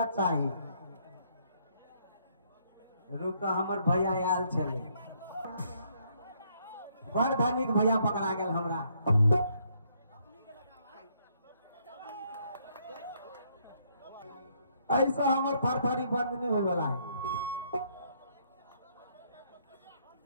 चाहिए रुक हमर भैया आयल चले बड़ धनिक भैया पकड़ा गया हमरा ऐसा हमर थरथरी बंद नहीं होए वाला है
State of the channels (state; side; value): inverted; both; correlation -0.70